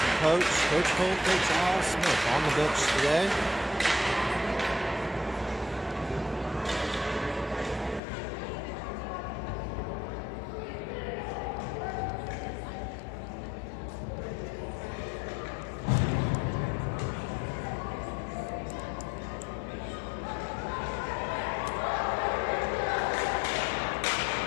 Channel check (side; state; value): right; drops out; at 8.0 s